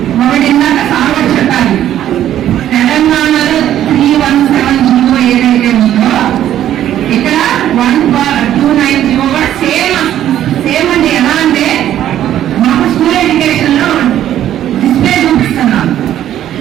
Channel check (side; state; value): left; quieter; 11.7 dB